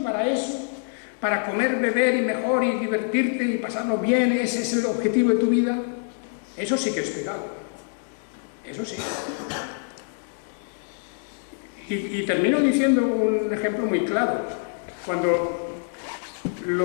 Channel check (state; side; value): silent; right; 62 dB below the other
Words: eso, para comer, beber y mejor y divertirte y pasarlo bien, ese es el objetivo de tu vida. Eso sí que es pecado. Eso sí. Y termino diciendo un ejemplo muy claro. Cuando